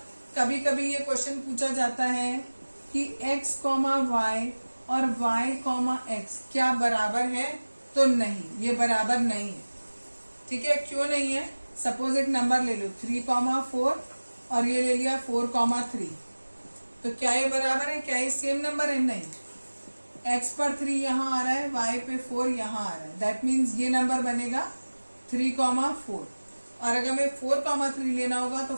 कभी कभी ये क्वेश्चन पूछा जाता है कि x, y और y, x क्या बराबर है? तो नहीं, ये बराबर नहीं है। ठीक है, क्यों नहीं है? सपोज एक नंबर ले लो 3, 4 और ये ले लिया 4, 3। तो क्या ये बराबर है? क्या ये सेम नंबर है? नहीं। x पर 3 यहाँ आ रहा है, y पे 4 यहाँ आ रहा है। दैट मीन्स ये नंबर बनेगा 3, 4। और अगर मैं 4, 3 लेना होगा तो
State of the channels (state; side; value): inverted; both; correlation -1.00